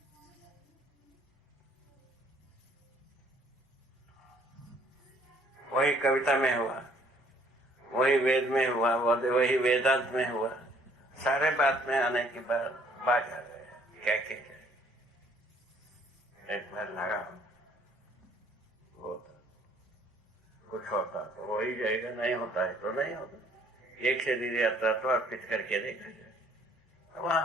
वही कविता में हुआ, वही वेद में हुआ, वही वेदांत में हुआ, सारे बात में आने के बाद बात आ गए। क्या एक बार लगा होता कुछ होता तो वही जाएगा, नहीं होता है तो नहीं होता। एक शरीर यात्रा तो अर्पित करके देखा जाए,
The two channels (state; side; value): normal; both; correlation 0.60